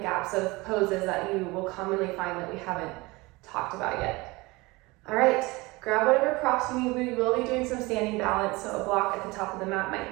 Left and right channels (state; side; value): quieter; left; 23.0 dB